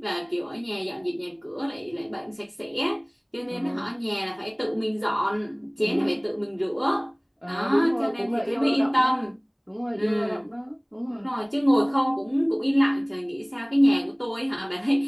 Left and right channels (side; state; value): both; identical; correlation 1.00